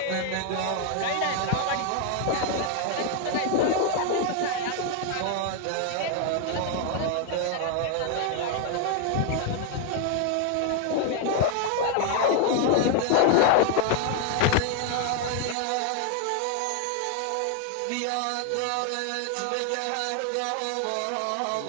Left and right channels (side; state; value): both; different; correlation 0.01